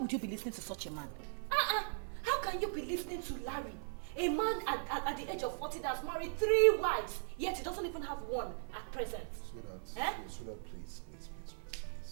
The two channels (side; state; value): left; silent; 52 dB below the other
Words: you be listening to such a man? How can you be listening to Larry? A man at the age of 40 that's married 3 wives, yet he doesn't even have one at present. Sweetheart,